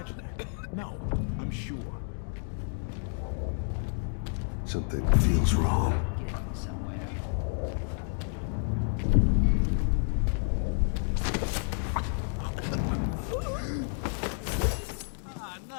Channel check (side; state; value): right; silent; 58 dB below the other